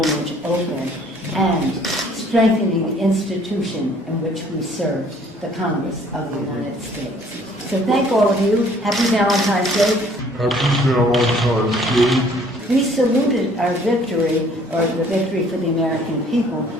open, and strengthening the institution in which we serve, the Congress of the United States. So thank all of you. Happy Valentine's Day. Happy Valentine's Day. We saluted our victory, or the victory for the American people,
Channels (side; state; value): both; normal; correlation 0.58